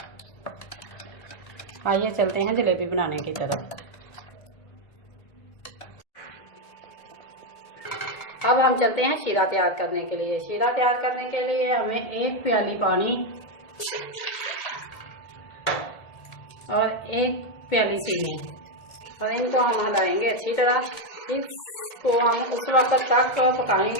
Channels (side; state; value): right; late; 2.1 ms